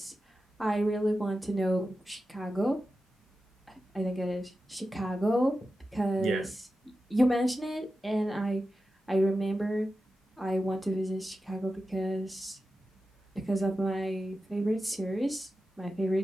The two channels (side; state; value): both; normal; correlation 0.92